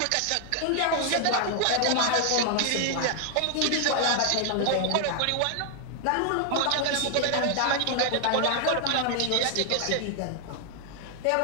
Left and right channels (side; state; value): both; different; correlation 0.00